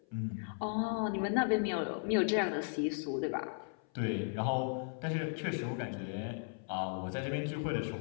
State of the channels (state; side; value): silent; right; 54 dB below the other